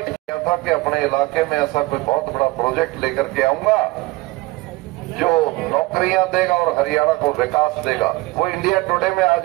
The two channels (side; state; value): left; quieter; 21.3 dB